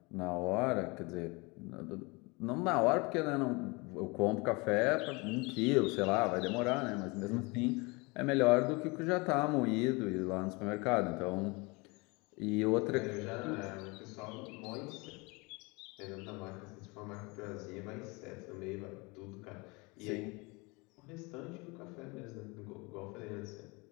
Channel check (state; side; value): quieter; right; 26.9 dB